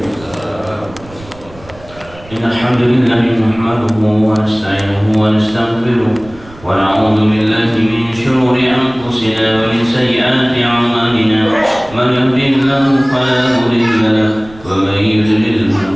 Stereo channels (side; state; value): right; noise; rumble, 21 dB below the sound